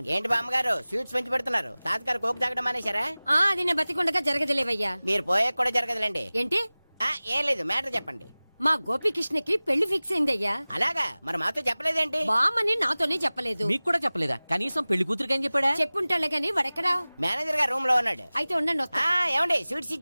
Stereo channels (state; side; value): inverted; both; correlation -0.99